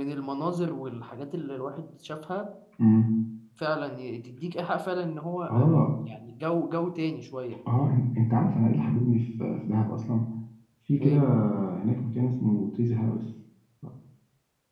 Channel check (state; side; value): identical; both; correlation 1.00